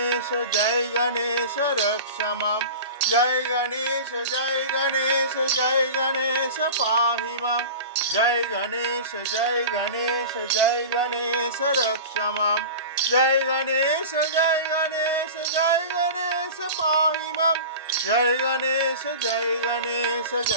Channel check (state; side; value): inverted; both; correlation -0.34